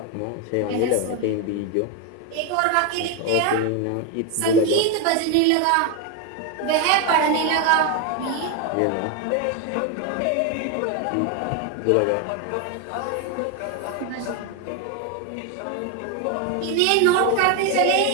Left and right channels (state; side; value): different; both; correlation 0.01